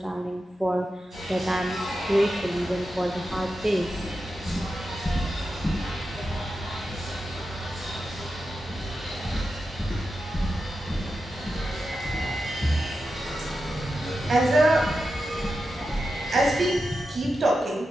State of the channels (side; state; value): both; normal; correlation 0.90